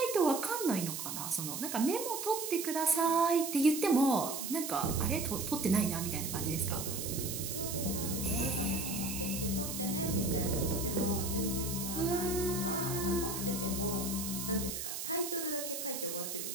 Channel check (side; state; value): right; noise; hiss, 5 dB below the sound